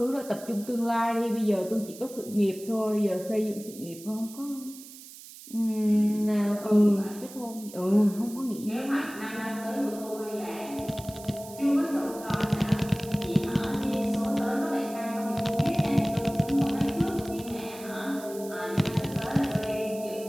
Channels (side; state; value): right; noise; hiss, 17 dB below the sound